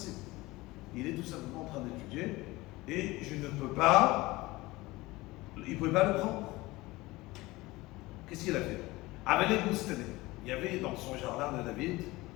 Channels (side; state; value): right; quieter; 20.4 dB